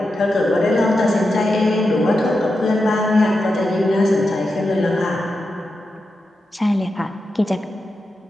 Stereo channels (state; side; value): normal; both; correlation 0.89